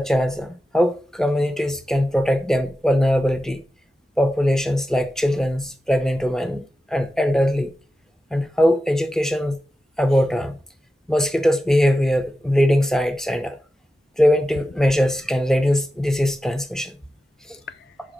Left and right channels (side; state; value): both; normal; correlation 0.92